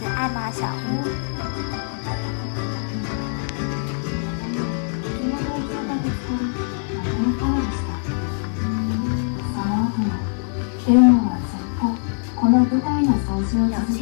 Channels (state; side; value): silent; right; 60 dB below the other